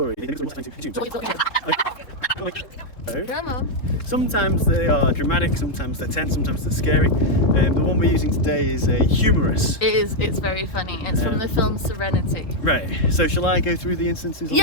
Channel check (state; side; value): late; right; 3.6 ms